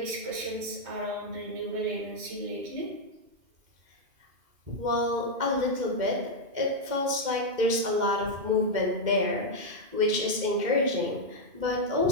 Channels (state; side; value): late; left; 2.1 ms